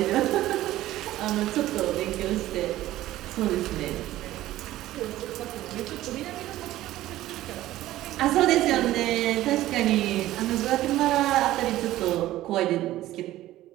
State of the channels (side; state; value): left; quieter; 15.1 dB